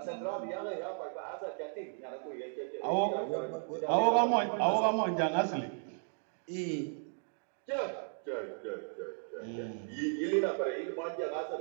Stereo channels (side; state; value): left; silent; 54 dB below the other